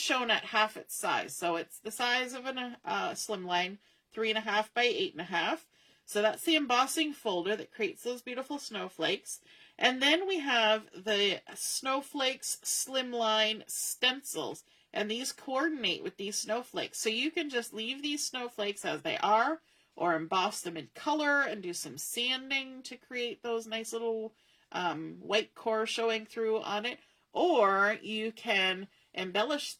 shown at half its size. So it's the size of a Slimline, 3.5 by 8.5. So that's the embossing folder that creates those beautiful snowflakes. And then we have the Snowflakes Slimline stencils, and these coordinate with these snowflakes. So you can just leave these snowflakes as they are, or emboss them in color and do some sanding to create those nice little white core showing through on it. Or you can embellish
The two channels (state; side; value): identical; both; correlation 1.00